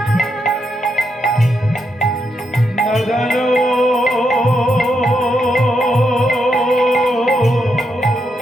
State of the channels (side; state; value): both; normal; correlation 0.81